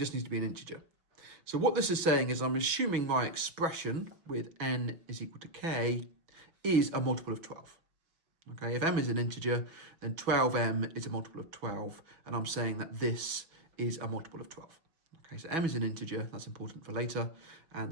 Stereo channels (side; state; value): left; late; 6.1 ms